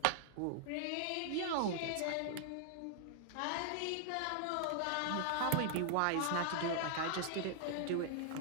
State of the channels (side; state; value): both; different; correlation 0.00